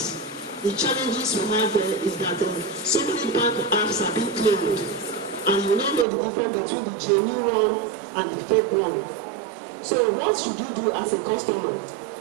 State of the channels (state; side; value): drops out; left; at 6.1 s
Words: The challenges we have there is that so many bank apps are being cloned, and you don't know the difference between the genuine one and the fake one. So what should you do as a customer?